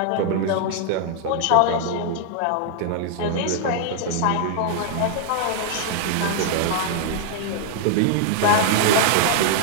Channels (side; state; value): both; different; correlation 0.00